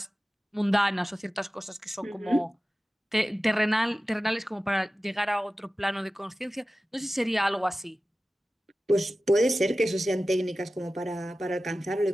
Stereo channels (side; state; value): both; normal; correlation 0.95